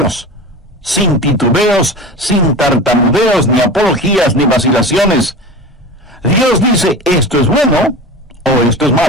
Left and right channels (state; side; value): normal; both; correlation 0.31